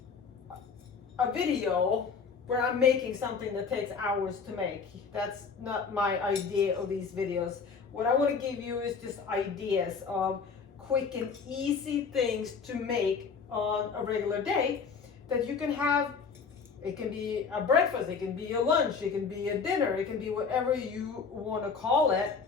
a video where I'm making something that takes hours to make. That's not my idea of these videos. What I want to give you is just ideas of quick and easy things to make on a regular day that you can have. It can be a breakfast, it can be a lunch, it can be a dinner, it can be whatever you want to call it.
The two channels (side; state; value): right; quieter; 5.5 dB